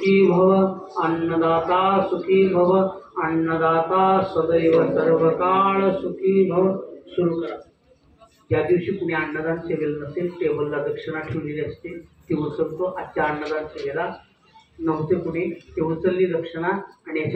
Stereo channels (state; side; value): identical; both; correlation 1.00